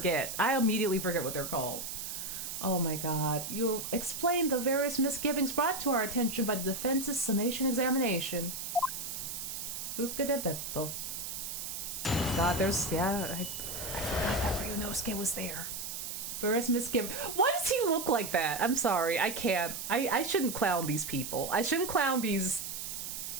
I immediately forget what they're called. Oh my god. You explained the various misgivings brought to our attention by the defense's summation examination. Luca de Beppo. God, there's... yeah, I forgot that Ryunosuke was there. Various misgivings. Why does he look like that? I'm sorry, I can't. I shouldn't clown these people. I shouldn't clown these...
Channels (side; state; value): right; noise; hiss, 6 dB below the sound